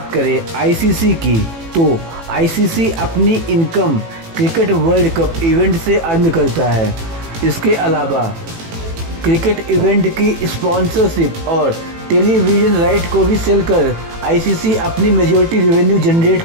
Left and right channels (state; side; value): late; left; 18 ms